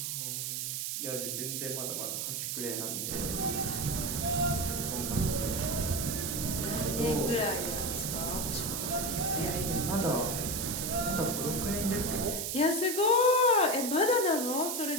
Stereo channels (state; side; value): noise; right; hiss, 2 dB below the sound